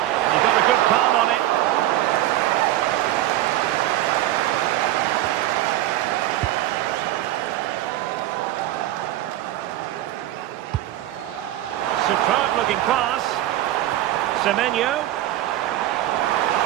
He got a good palm on it. Superb looking pass. Semenyo.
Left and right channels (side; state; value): left; quieter; 14.5 dB